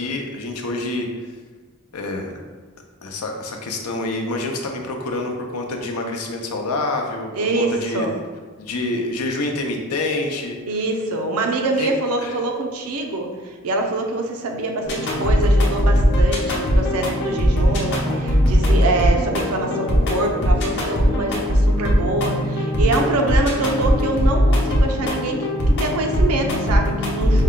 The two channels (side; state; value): both; normal; correlation 0.58